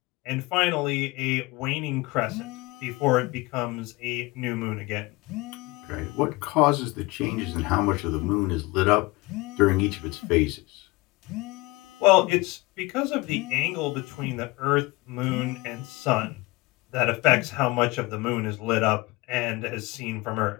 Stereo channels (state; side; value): quieter; right; 22.7 dB